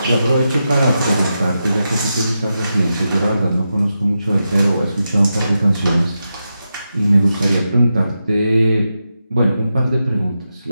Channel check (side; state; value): both; inverted; correlation -0.88